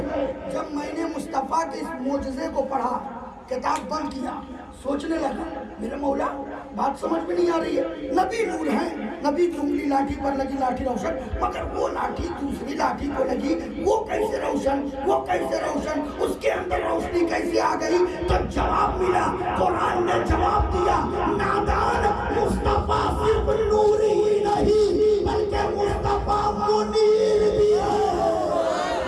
जब मैंने मुस्तफा के इस मोजज़े को पढ़ा, किताब बंद किया, सोचने लगा मेरे मौला बात समझ में नहीं आ रही है, नबी नूर है, नबी की उंगली लाठी पर लगी, लाठी रोशन, मगर वो लाठी दूसरी लाठी को लगी, वो कैसे रोशन, वो कैसे रोशन, उसके अंदर रोशनी कैसे आ गई। तो जवाब मिला, कुरान ने जवाब दिया, नादान मुस्तफा सिर्फ नूर ही नहीं बल्कि मुस्तफा मुनीर भी है।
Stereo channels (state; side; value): identical; both; correlation 1.00